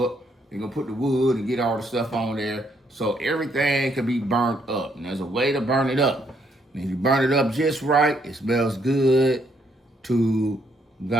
up. They're going to put the wood and get all the stuff on there so everything can be burnt up. And there's a way to burn it up. And if you burn it up just right, it smells good to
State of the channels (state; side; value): normal; both; correlation 0.72